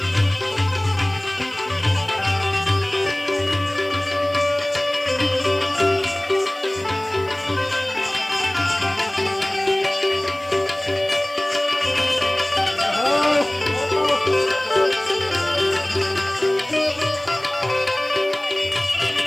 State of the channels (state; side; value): noise; right; hiss, 26 dB below the sound